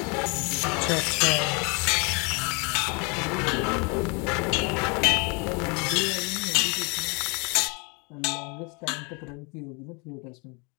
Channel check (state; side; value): quieter; right; 31.6 dB